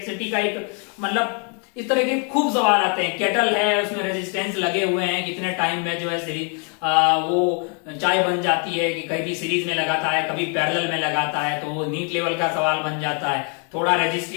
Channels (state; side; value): quieter; right; 39.3 dB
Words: का एक मतलब इस तरह के खूब सवाल आते हैं। केटल है, उसमें रेजिस्टेंस लगे हुए हैं, कितने टाइम में जो है सीरीज वो चाय बन जाती है, कि कभी सीरीज में लगाता है कभी पैरेलल में लगाता है, तो वो नीट लेवल का सवाल बन जाता है। थोड़ा